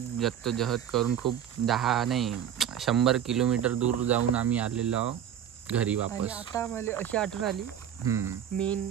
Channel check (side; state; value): left; quieter; 9.5 dB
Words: जद्दोजहद करून खूप 10 नाही 100 किलोमीटर दूर जाऊन आम्ही आलेलो आहोत घरी वापस. आता मला अशी आठवण आली